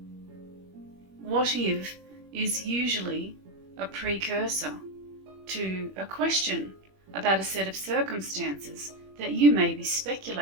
What if is usually a precursor to a question about a set of circumstances that you may be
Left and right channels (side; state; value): left; late; 21 ms